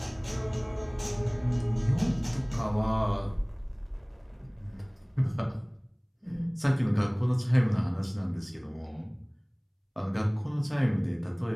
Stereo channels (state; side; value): identical; both; correlation 1.00